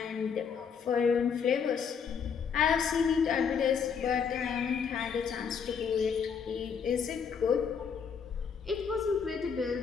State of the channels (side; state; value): right; quieter; 6.6 dB